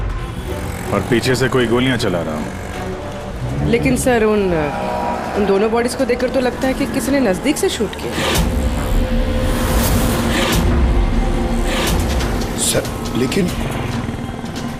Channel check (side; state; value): both; identical; correlation 1.00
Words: और पीछे से कोई गोलियां चला रहा हो। लेकिन सर उन दोनों बॉडीज को देखकर तो लगता है कि किसी ने नजदीक से शूट किया। सर, लेकिन